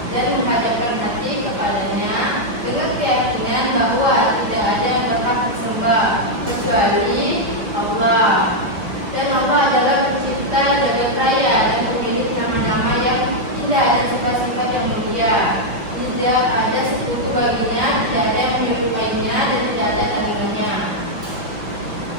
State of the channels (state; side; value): late; left; 5.7 ms